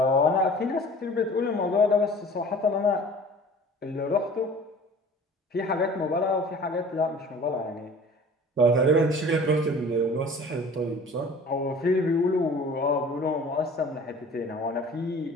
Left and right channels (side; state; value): both; normal; correlation 0.45